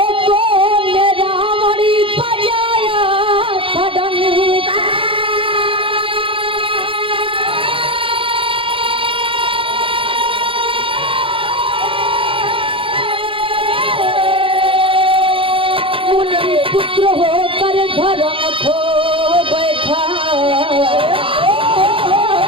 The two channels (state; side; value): late; left; 0.25 ms